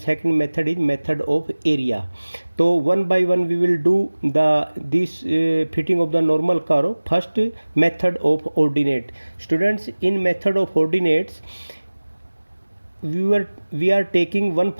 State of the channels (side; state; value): both; inverted; correlation -1.00